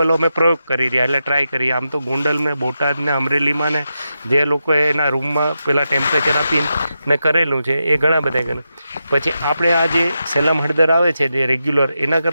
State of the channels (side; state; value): both; inverted; correlation -0.88